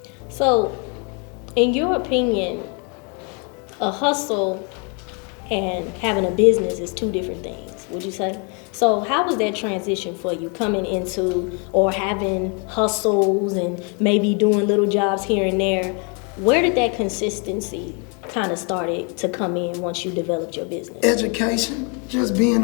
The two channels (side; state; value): right; quieter; 35.3 dB